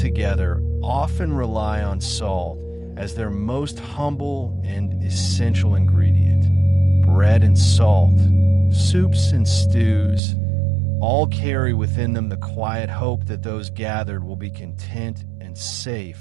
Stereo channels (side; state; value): left; drops out; at 10.2 s